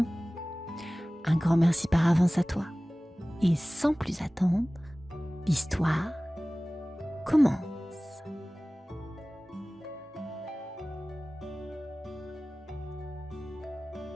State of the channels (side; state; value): both; normal; correlation 0.98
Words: Un grand merci par avance à toi. Et sans plus attendre, l'histoire commence.